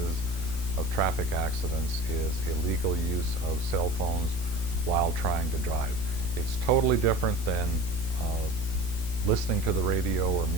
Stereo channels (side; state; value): left; late; 16 ms